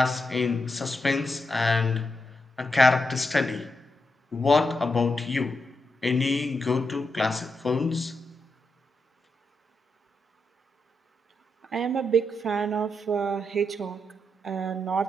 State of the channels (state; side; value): normal; both; correlation 0.84